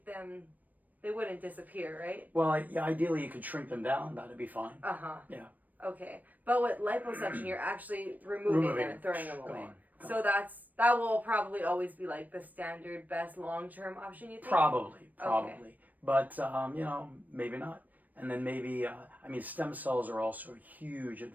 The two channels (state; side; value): late; left; 0.082 ms